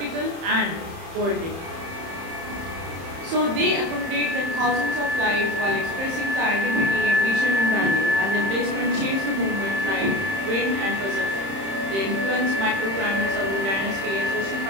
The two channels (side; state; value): left; late; 31 ms